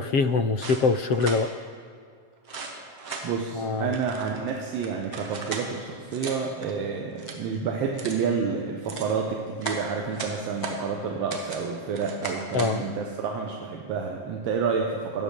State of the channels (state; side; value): late; right; 7.5 ms